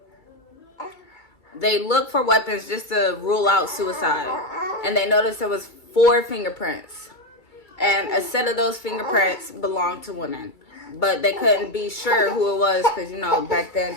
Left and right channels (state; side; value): late; right; 2.3 ms